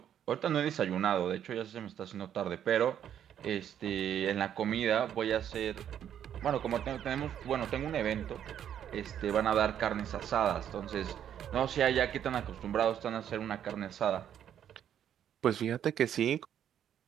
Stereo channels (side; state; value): left; quieter; 9.7 dB